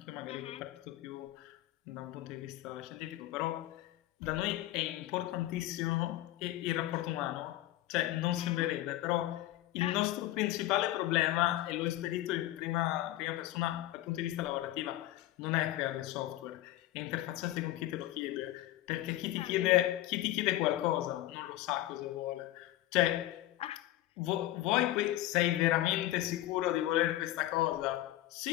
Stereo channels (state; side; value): quieter; right; 15.5 dB